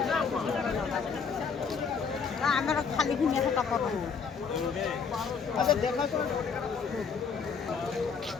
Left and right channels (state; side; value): quieter; right; 5.9 dB